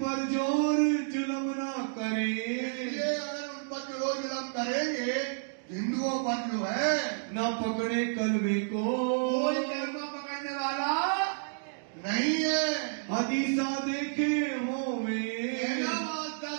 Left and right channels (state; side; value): silent; left; digital silence